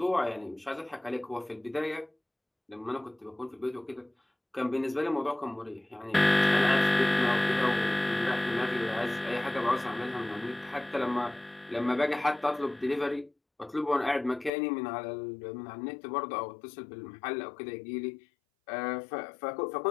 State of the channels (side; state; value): right; drops out; at 14.5 s